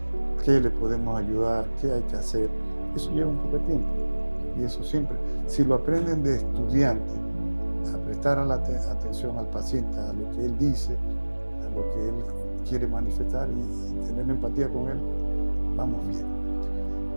qué le podemos ayudar, qué hay que hacer. Eso lleva un poco de tiempo. Y eso siempre, si lo aprenden de estudiante, a prestar atención al paciente, a lo que él dice, a lo que él quiere manifestar y tener empatía con él, vamos bien.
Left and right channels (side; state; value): both; inverted; correlation -1.00